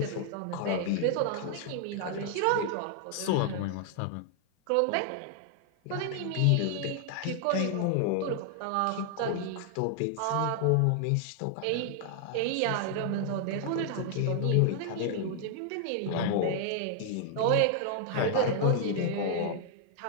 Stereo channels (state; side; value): different; both; correlation 0.00